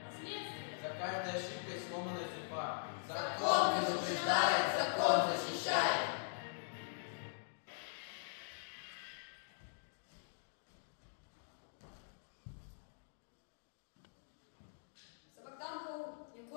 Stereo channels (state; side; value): silent; right; digital silence